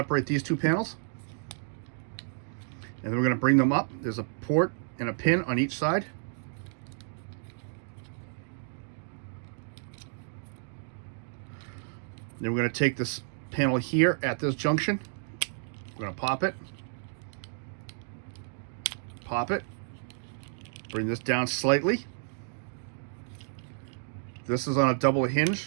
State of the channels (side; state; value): left; silent; digital silence